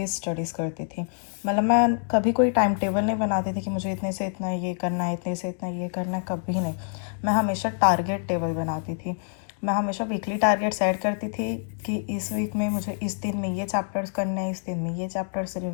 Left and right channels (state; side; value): silent; right; digital silence